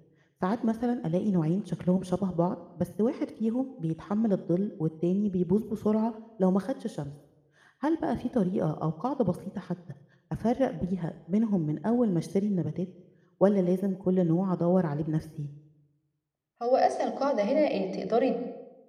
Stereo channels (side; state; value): both; identical; correlation 1.00